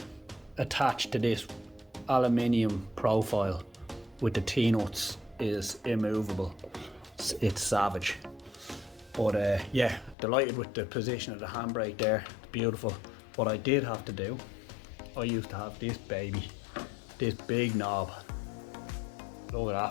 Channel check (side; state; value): right; drops out; at 10.2 s